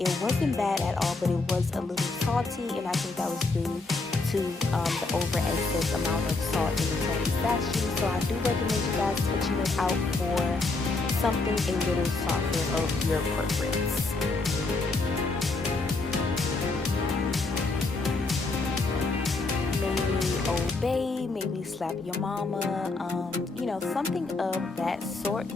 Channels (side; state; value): right; quieter; 3.5 dB